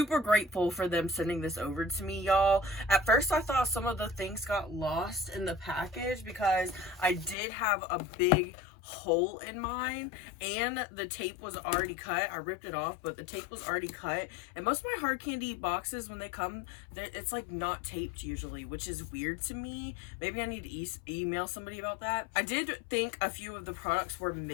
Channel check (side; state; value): right; drops out; at 7.4 s